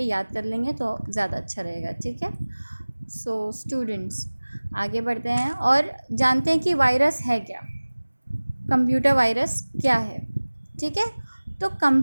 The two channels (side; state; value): both; inverted; correlation -1.00